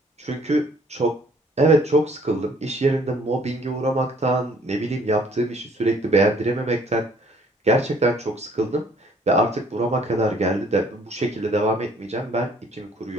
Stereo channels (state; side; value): normal; both; correlation 0.59